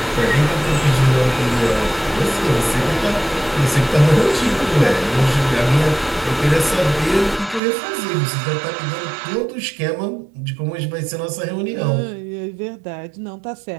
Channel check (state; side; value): drops out; left; at 7.6 s